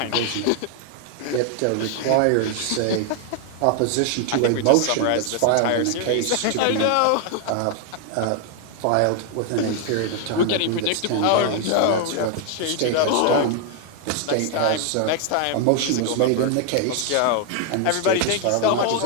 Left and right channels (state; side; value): different; both; correlation 0.00